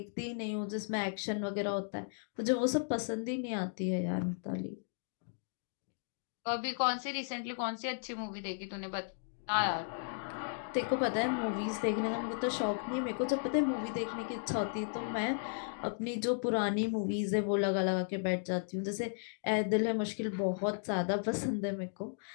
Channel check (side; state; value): right; silent; digital silence